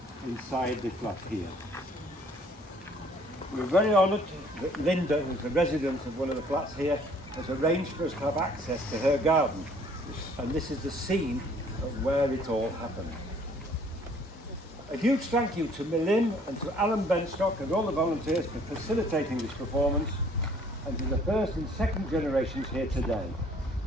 inside the flat here. We're very honoured that Linda, who's a resident of one of the flats here, has arranged for us to have access to her garden. And this is the scene of where it all happened. A huge thank you to Millim and to Alan Benstock and all the volunteers for facilitating this performance, and to the first and second generations here today.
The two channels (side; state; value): both; normal; correlation 0.58